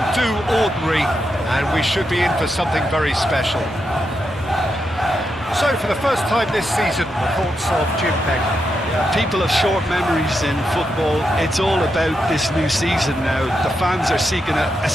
do ordinary, and we should be in for something very special. So, for the first time this season, the thoughts of Jim Pegg. People have short memories in football. It's all about this new season now. The fans are seeking a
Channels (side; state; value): both; normal; correlation 0.84